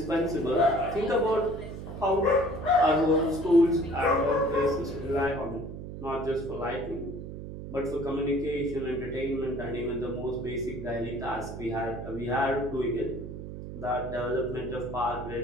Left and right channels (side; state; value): right; noise; hum, 9 dB below the sound